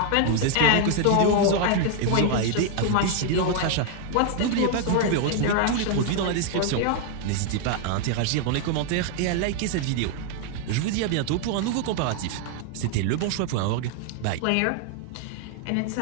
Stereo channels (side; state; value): both; different; correlation 0.00